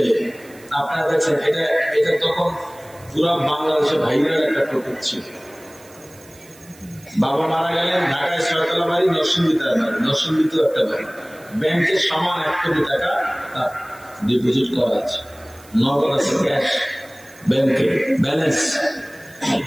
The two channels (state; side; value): noise; right; hiss, 24 dB below the sound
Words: আপনারা দেখছেন, এটা তখন পুরা বাংলাদেশে ভাইরাল একটা টপিক ছিল। বাবা মারা গেলেন, ঢাকায় 6 তলা বাড়ি, নরসিংদীতে বাড়ি, নরসিংদীতেও একটা বাড়ি, ব্যাংকের সমান 1 কোটি টাকা তার ডিপোজিট করা আছে, নগদ আছে, ক্যাশ ব্যাংকে ব্যালেন্স।